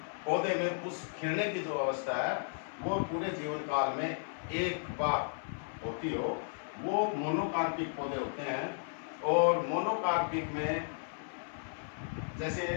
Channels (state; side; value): silent; right; 55 dB below the other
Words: पौधे में पुष्प खिलने की जो अवस्था है वो पूरे जीवन काल में एक बार होती हो, वो मोनोकार्पिक पौधे होते हैं। और मोनोकार्पिक में जैसे